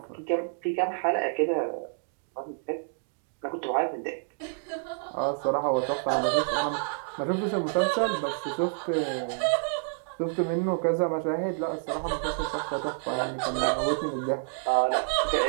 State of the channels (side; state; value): left; silent; 59 dB below the other